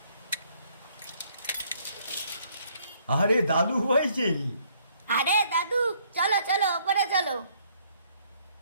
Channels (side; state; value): both; inverted; correlation -0.65